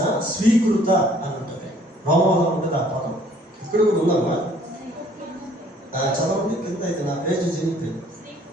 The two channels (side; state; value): both; normal; correlation 0.58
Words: స్వీకృత అని ఉంటుంది. రోమాలో ఉంటుంది ఆ పదం. ఇక్కడ కూడా ఉందమ్మా, చదవండి కింద. అయితే నా పేజ్ జరిగిపోయింది.